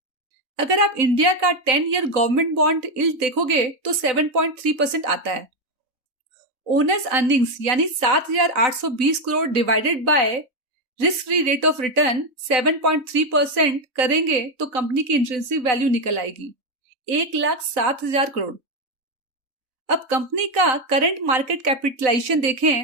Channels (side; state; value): left; late; 3.9 ms